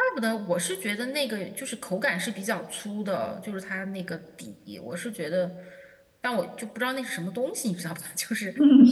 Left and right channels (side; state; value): both; identical; correlation 1.00